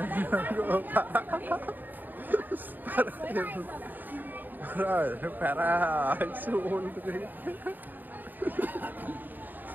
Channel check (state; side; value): late; left; 0.089 ms